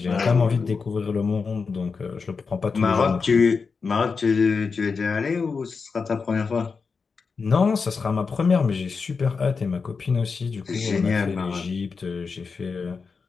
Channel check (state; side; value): quieter; right; 5.0 dB